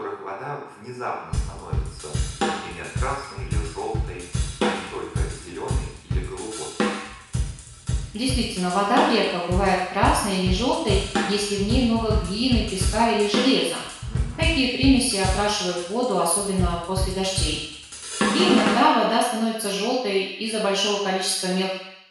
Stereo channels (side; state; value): both; identical; correlation 1.00